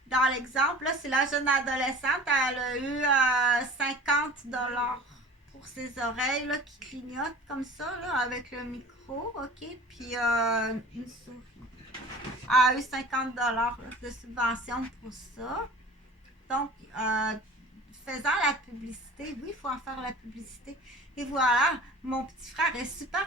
Dans l'exemple, là, c'est la jeune adolescente, elle a eu 50$ pour ses oreilles, là, qui clignotent comme ça, là, avec le micro, ok? Puis une souris. Elle a eu 50$ là, de subvention pour ça. Donc, faisant la publicité, oui, il faut en faire la publicité. Et voilà, mon petit frère est super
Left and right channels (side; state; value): both; normal; correlation 0.42